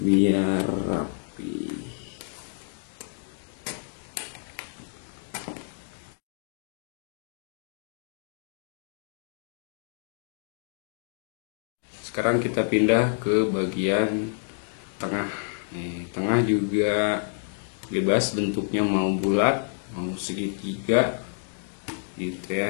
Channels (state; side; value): silent; right; 59 dB below the other